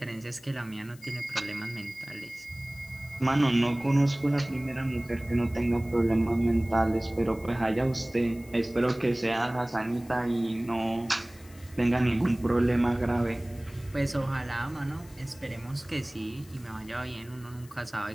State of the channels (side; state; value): left; noise; hiss, 24 dB below the sound